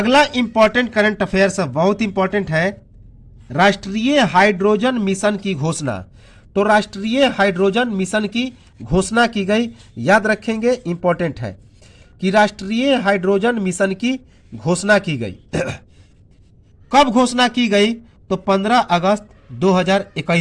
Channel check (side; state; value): both; identical; correlation 1.00